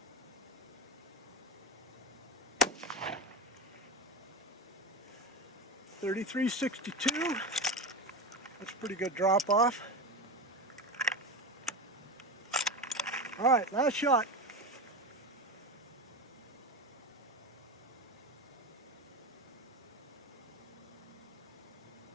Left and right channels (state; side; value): normal; both; correlation 0.21